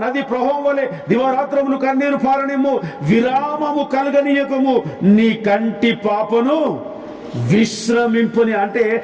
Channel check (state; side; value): identical; both; correlation 1.00